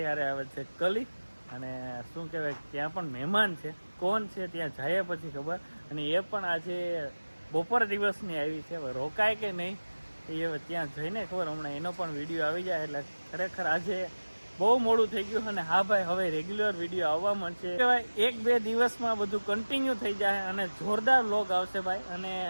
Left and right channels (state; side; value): inverted; both; correlation -1.00